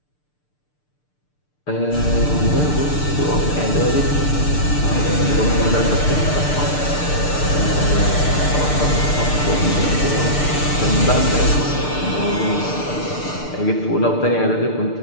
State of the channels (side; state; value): right; late; 6.7 ms